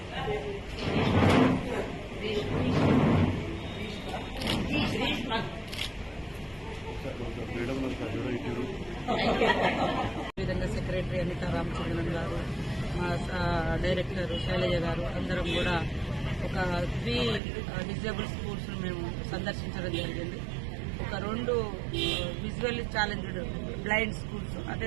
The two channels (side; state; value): left; drops out; at 17.4 s